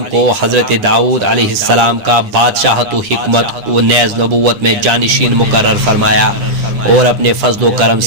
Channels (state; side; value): late; left; 10 ms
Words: کو حضرت داؤد علیہ السلام کا بادشاہت و حکمت و نیز نبوت میں جانشین مقرر فرمایا اور اپنے فضل و کرم